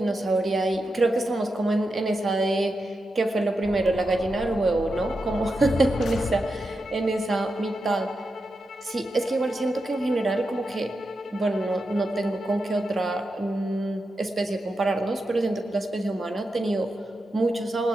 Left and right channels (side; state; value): both; normal; correlation 0.88